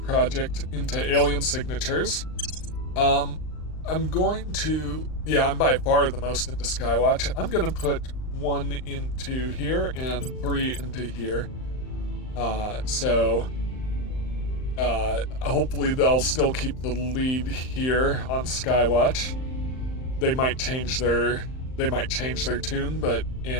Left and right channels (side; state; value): right; late; 39 ms